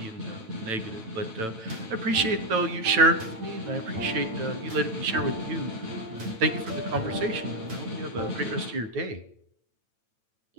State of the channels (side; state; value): left; late; 9.0 ms